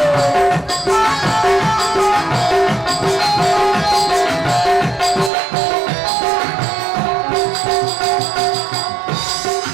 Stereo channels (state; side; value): drops out; left; at 5.3 s